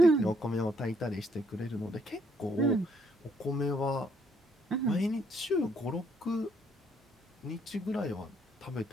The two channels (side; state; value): both; normal; correlation 0.69